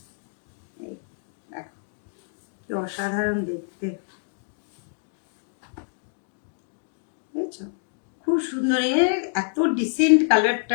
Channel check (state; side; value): silent; right; digital silence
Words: কি অসাধারণ দেখতে, বুঝছো? খুব সুন্দর, এত ডিসেন্ট